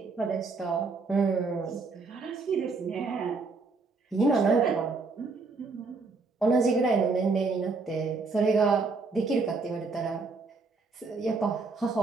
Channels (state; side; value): quieter; left; 4.1 dB